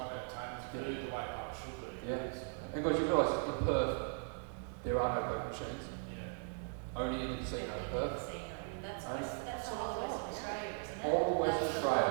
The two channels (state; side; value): silent; left; 52 dB below the other